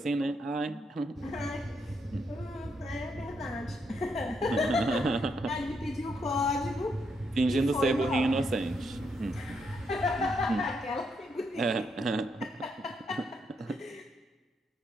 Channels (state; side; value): normal; both; correlation 0.78